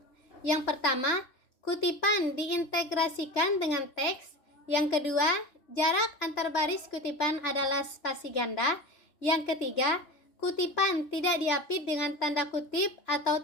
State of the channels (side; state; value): right; late; 3.4 ms